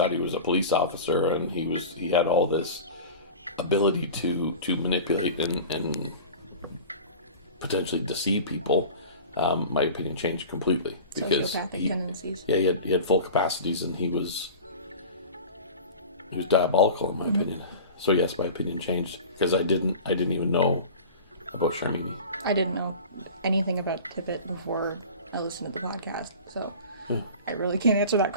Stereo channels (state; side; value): inverted; both; correlation -0.36